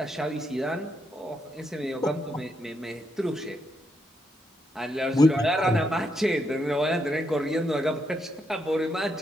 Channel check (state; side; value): normal; both; correlation 0.79